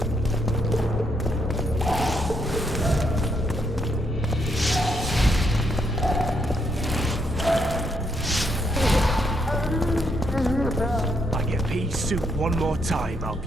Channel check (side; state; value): both; normal; correlation 0.75